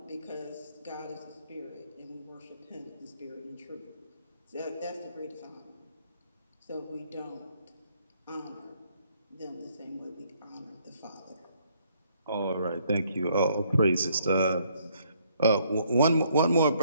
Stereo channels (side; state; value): both; inverted; correlation -0.67